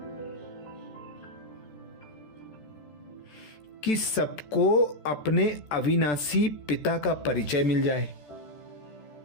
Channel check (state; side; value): late; right; 14 ms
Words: कि सबको अपने अविनाशी पिता का परिचय मिल जाए।